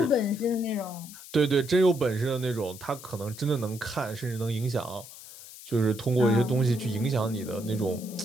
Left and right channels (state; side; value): noise; left; hiss, 16 dB below the sound